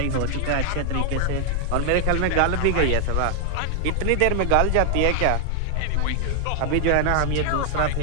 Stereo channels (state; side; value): different; both; correlation 0.00